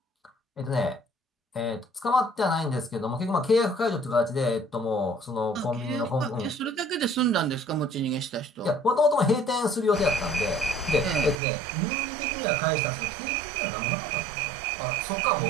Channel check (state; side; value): drops out; left; at 11.4 s